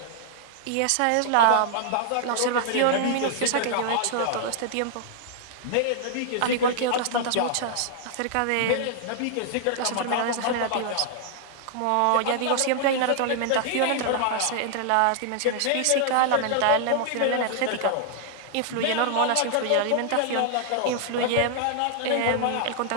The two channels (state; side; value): different; both; correlation -0.01